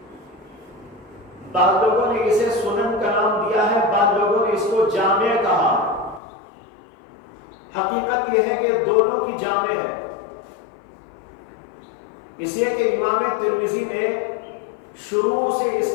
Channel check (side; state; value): right; drops out; at 6.2 s